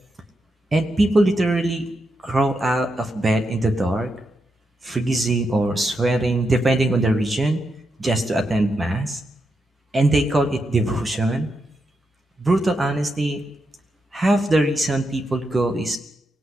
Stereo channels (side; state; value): both; normal; correlation 0.84